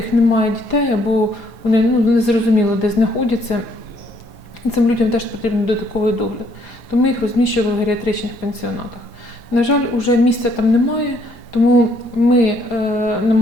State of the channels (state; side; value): normal; both; correlation 0.67